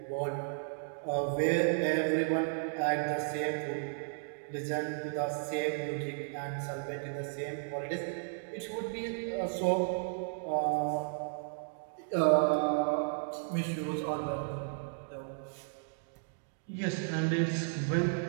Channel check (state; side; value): silent; left; digital silence